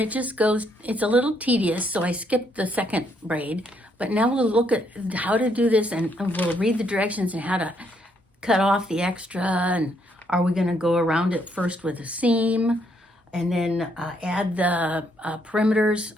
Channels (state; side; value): normal; both; correlation 0.72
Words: just goes, it's a little tedious, so I skipped the 2nd braid. But now we'll look at how to do this, and we'll read the directions and how to cut off the extra, and are we going to go around it first with a seam, and then add the perimeters,